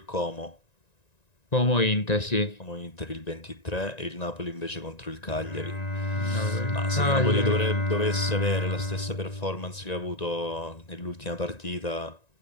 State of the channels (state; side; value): late; right; 1.9 ms